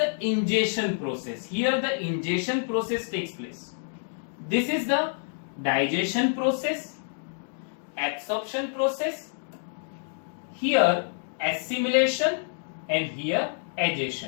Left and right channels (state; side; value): silent; right; digital silence